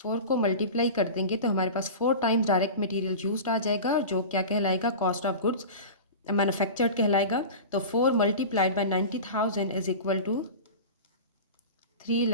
को मल्टीप्लाई कर देंगे तो हमारे पास 4 टाइम्स डायरेक्ट मटेरियल यूज्ड आ जाएगा, जो क्या कहलाएगा, कॉस्ट ऑफ गुड्स मैन्युफैक्चर्ड कहलाएगा। तो 4 multiplied by 90,000 is equal to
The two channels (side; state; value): both; inverted; correlation -0.31